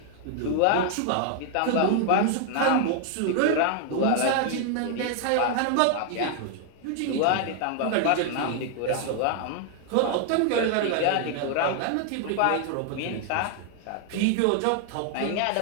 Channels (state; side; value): different; both; correlation 0.00